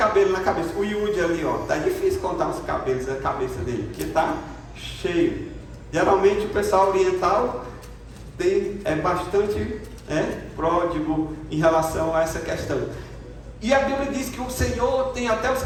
na cabeça. O Yudi ali, ó, tá difícil contar os cabelos da cabeça dele, porque tá cheio. Geralmente o pessoal oriental é bastante pródigo em relação a essa questão. E a Bíblia diz que o Senhor tem até os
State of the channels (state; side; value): identical; both; correlation 1.00